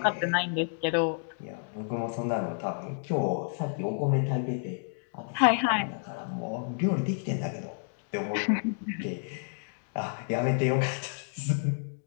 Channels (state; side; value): silent; right; digital silence